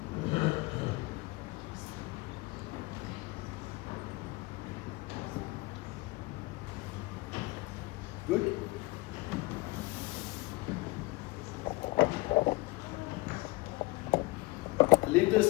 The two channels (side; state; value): right; quieter; 21.9 dB